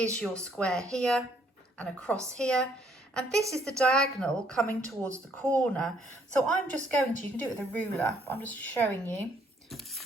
your square here and across here, and this is the diagonal coming towards the corner. So I'm just going to, you can do it with a ruler, but I'm just showing you,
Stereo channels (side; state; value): both; normal; correlation 0.66